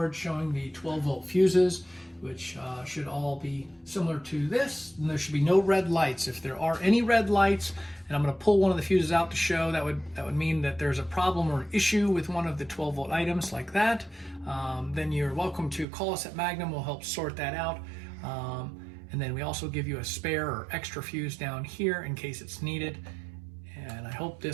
showing the 12-volt fuses, which should all be similar to this. And there should be no red lights. If there are any red lights, and I'm going to pull one of the fuses out to show, that would mean that there's a problem or an issue with one of the 12-volt items like that. Then you're welcome to call us at Magnum. We'll help sort that out. And then we also give you a spare or extra fuse down here in case it's needed. And I hope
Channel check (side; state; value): left; drops out; at 15.9 s